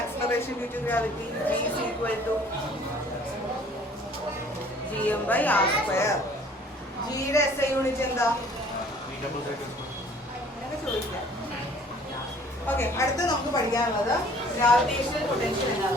due to gravity G is equal to Gm by R square. ജിയുടെ SI unit എന്താ? അങ്ങനെ ചോദിക്കാം. Okay, അടുത്ത് നമുക്ക് പഠിക്കാനുള്ളത് gravitational potential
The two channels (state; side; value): normal; both; correlation 0.54